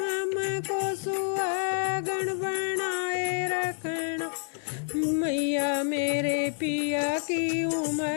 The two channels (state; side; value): silent; right; 59 dB below the other